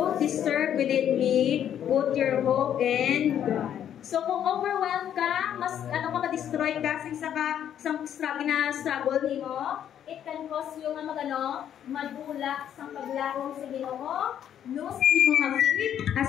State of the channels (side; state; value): right; quieter; 9.8 dB